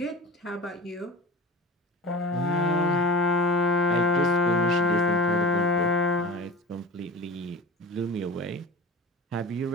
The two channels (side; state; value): both; normal; correlation 0.34